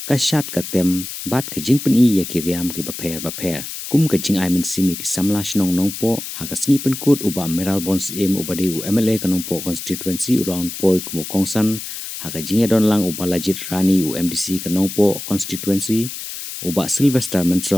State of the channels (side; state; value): left; noise; hiss, 8 dB below the sound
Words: kasyat katem bat kajing peni ya kiriam ki baper kum kajing ai men simi ki samla shnong nong po ha kasngi penkut uba meral bons em uba de MLA kanong po constituency around poi kumu kongsan ha kajing don lang uba lajit rani MDC kanong po constituency uba Sylvester